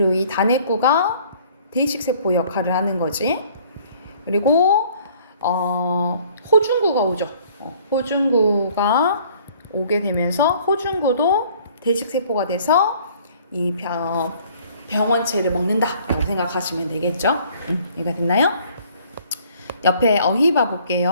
이 단핵구가 대식세포 역할을 하는 거지. 그리고 호중구가 오죠. 호중구가 오게 되면서 호중구도 대식세포가 돼서 이 병원체를 먹는다라고 생각하시면 되겠죠. 이해가 됐나요? 옆에 어휘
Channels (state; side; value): inverted; both; correlation -0.57